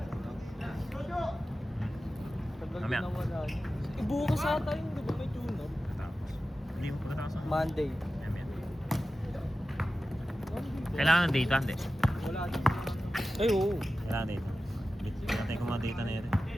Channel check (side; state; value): both; normal; correlation 0.94